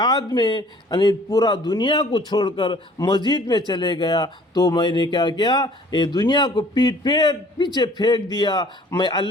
میں، یعنی پورا دنیا کو چھوڑ کر مسجد میں چلے گیا تو میں نے کیا کیا؟ یہ دنیا کو پیچھے پھینک دیا. میں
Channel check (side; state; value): both; normal; correlation 0.53